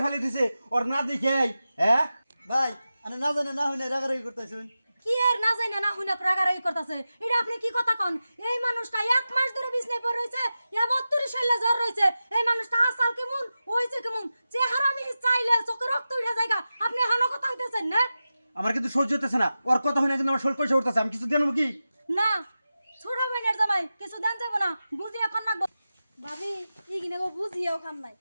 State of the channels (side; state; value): both; inverted; correlation -0.94